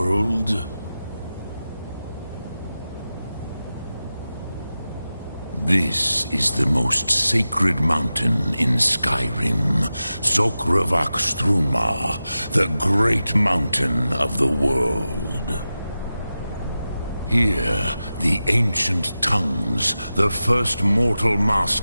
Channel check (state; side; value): inverted; both; correlation -0.93